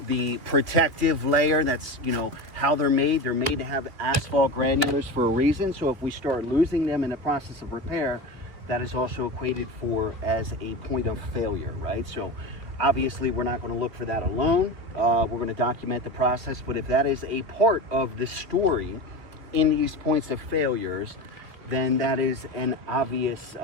protective layer. That's, how they're made. They're made to have asphalt granulars for a reason. So if we start losing them in the process of repair, that is also equated for as a point of failure, right? So obviously we're not going to look for that alone. We're going to document the process. But if that is a part of the story in these points of failures, then that is an obvious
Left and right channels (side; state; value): left; late; 3.0 ms